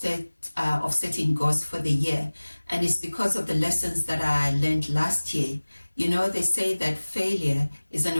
of setting goals for the year. And it's because of the lessons that I learned last year. You know, they say that failure is an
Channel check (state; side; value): inverted; both; correlation -1.00